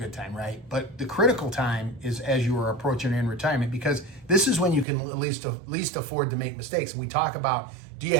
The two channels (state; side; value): drops out; left; at 4.9 s